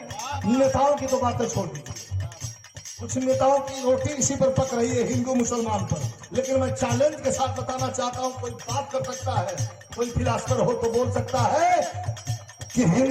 नेताओं की तो बातें छोड़ दी, कुछ नेताओं की रोटी इसी पर पक रही है, हिंदू मुसलमान पर। लेकिन मैं चैलेंज के साथ बताना चाहता हूं, कोई बात कर सकता है, कोई फिलासफर हो तो बोल सकता है कि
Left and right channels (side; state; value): both; identical; correlation 1.00